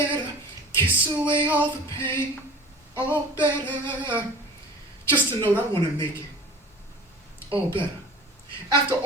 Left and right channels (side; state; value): both; normal; correlation 0.42